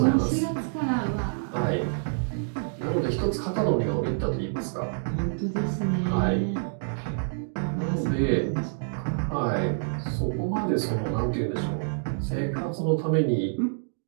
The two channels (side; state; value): left; silent; digital silence